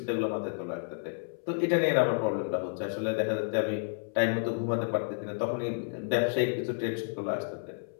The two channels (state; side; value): silent; right; 57 dB below the other